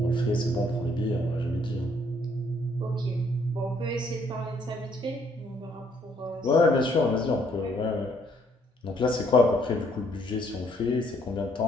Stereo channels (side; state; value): both; normal; correlation 0.67